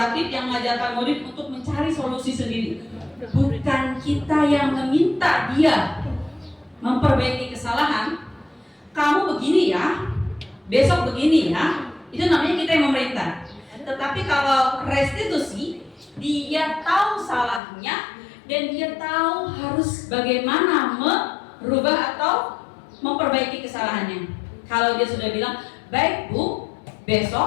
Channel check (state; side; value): drops out; right; at 17.6 s